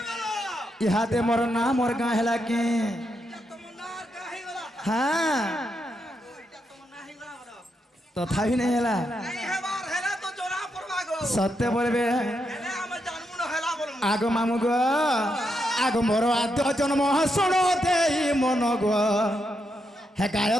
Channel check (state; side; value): normal; both; correlation 0.82